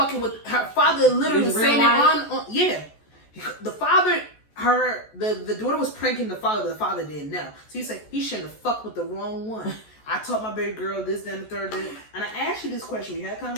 with her father. Literally was saying it on yeah. The father. The daughter was pranking the father, but the father didn't know. So he's like, he shouldn't have fucked with the wrong one. I taught my baby girl this, then the third, and I asked you this question. We had a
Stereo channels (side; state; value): right; late; 14 ms